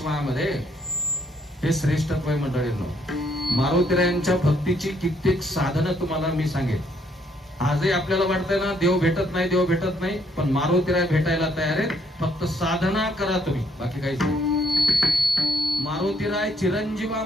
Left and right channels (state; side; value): normal; both; correlation 0.69